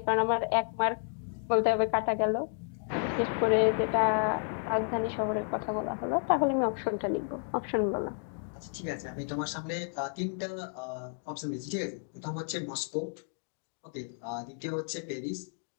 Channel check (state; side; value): silent; right; 57 dB below the other